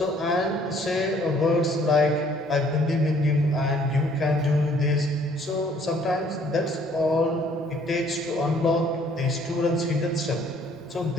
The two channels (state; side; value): normal; both; correlation 0.60